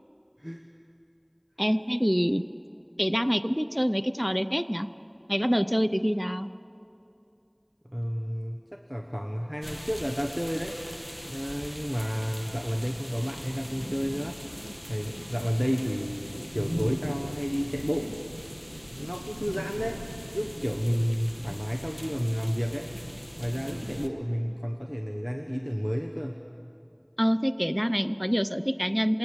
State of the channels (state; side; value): identical; both; correlation 1.00